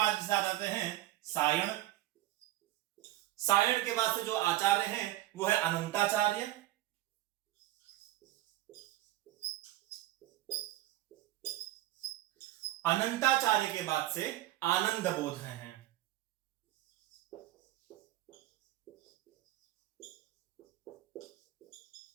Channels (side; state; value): left; quieter; 15.7 dB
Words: आ जाते हैं सायण। सायण के बाद से जो आचार्य हैं वो है अनंताचार्य। अनंताचार्य के बाद से आनंद बोध हैं।